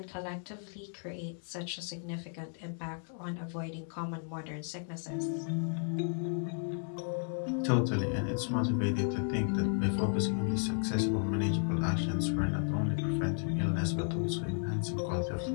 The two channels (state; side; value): silent; right; 55 dB below the other